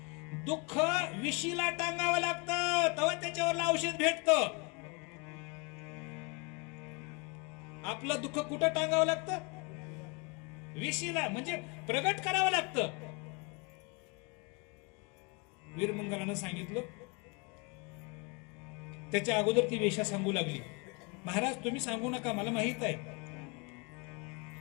दुःख विशीला टांगावं लागतं तेव्हा त्याच्यावर औषध भेटतं. आपलं दुःख कुठं टांगावं लागतं. विशीला, म्हणजे प्रगट करावं लागतं. वीरमंगलानं सांगितलं. त्याच्या अगोदर ती वेश्या सांगू लागली, महाराज तुम्ही सांगू नका, मला माहित आहे.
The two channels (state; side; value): quieter; right; 30.5 dB